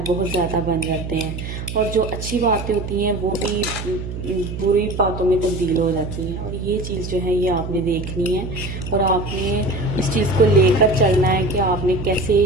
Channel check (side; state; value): right; noise; hum, 7 dB below the sound